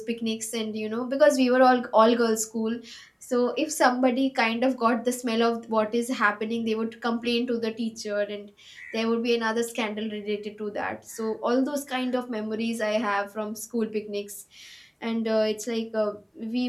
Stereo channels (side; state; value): both; identical; correlation 1.00